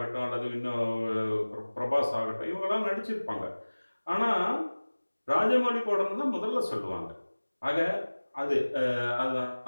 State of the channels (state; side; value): inverted; both; correlation -1.00